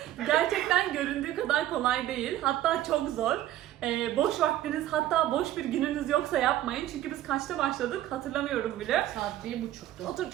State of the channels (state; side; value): quieter; left; 13.4 dB